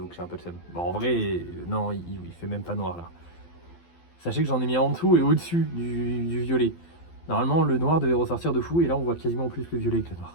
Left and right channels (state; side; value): late; right; 12 ms